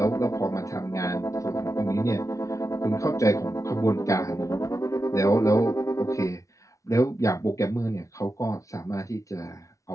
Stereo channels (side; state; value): right; late; 0.15 ms